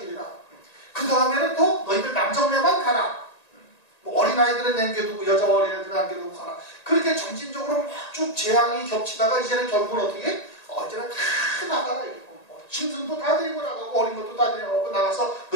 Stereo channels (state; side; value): late; right; 1.9 ms